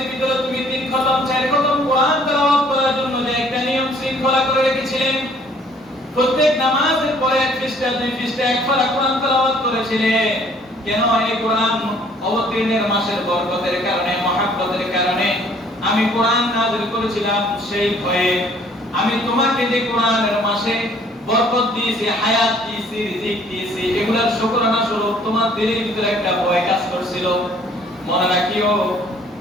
ভিতরে তুমি তিন খতম, চার খতম কোরআন তেলাওয়াত করার জন্য যে একটা নিয়ম শৃঙ্খলা করে রেখেছিলেন, প্রত্যেক নামাজের পরে এক পৃষ্ঠা, দুই পৃষ্ঠা, এক পারা কোরআন তেলাওয়াত করেছিলেন। কেন? এই কোরআন অবতীর্ণের মাসের বরকতের কারণে, মহব্বতের কারণে আমি কোরআন নাযিল করেছিলাম। সেই ভয়ে আমি তোমাকে যে কোরআনের মাসে বরকত দিয়েছি, হায়াত দিয়েছি, রিজিক দিয়েছি, এগুলোর শুকরানা স্বরূপ তোমার দিলের ভিতরে একটা ভয় কাজ করছিল। মনে রাখিও,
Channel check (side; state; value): both; normal; correlation 0.59